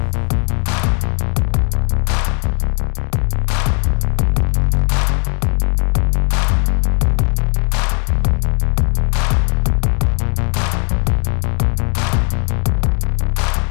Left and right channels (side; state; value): right; quieter; 40.0 dB